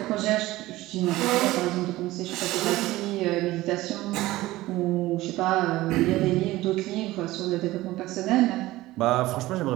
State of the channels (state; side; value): quieter; left; 17.5 dB